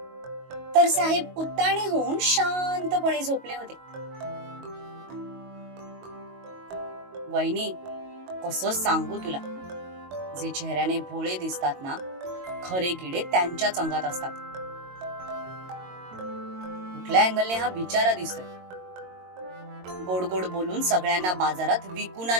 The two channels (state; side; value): late; left; 22 ms